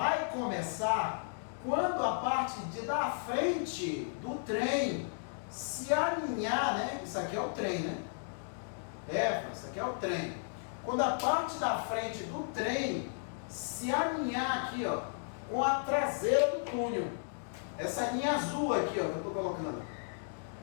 começar quando a parte da frente do trem se alinhar, né? Isso aqui é o trem, né? Isso aqui é o trem. Quando a parte da frente do trem se alinhar aqui, ó, com a traseira do túnel. Essa linha azul aqui, ó, que eu estou colocando.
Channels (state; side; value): silent; right; digital silence